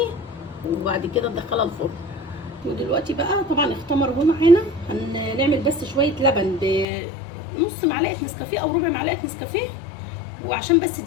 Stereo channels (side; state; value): right; drops out; at 6.9 s